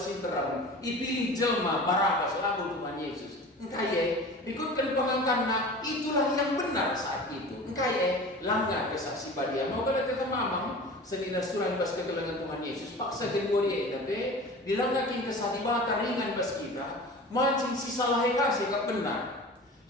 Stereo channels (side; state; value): both; normal; correlation 0.37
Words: ipilih jelma Barabas lalu Tuhan Yesus engkaya ikutkan pengangkatna itulah yang benar saat itu engkaya langgar kesaksi badia mau kada kita mamang senina surah bas kegelangan Tuhan Yesus paksa jenggori tapi dilanggakin kesadibata ringan bas kita mancing si salah eka sekap benar